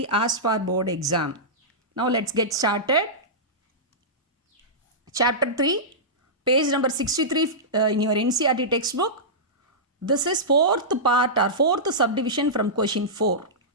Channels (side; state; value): both; normal; correlation -0.15